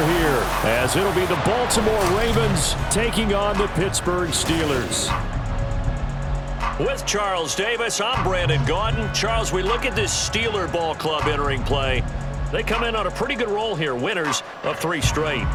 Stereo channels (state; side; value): identical; both; correlation 1.00